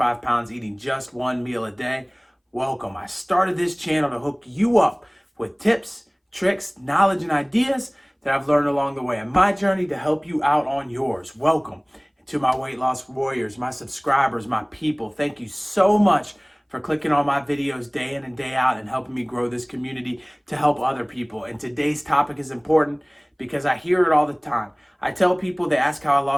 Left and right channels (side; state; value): both; identical; correlation 1.00